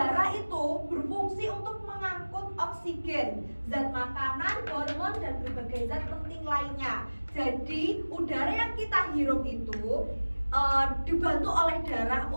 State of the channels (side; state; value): both; inverted; correlation -1.00